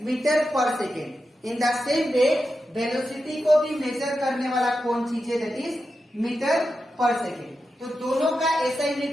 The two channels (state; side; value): normal; both; correlation 0.89